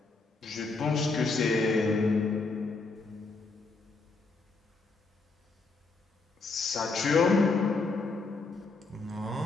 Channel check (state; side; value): quieter; right; 3.9 dB